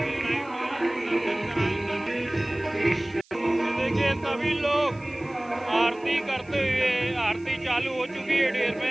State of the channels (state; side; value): noise; right; hiss, 30 dB below the sound